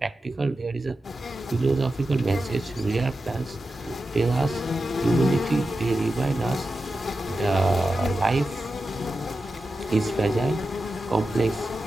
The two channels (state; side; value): normal; both; correlation 0.91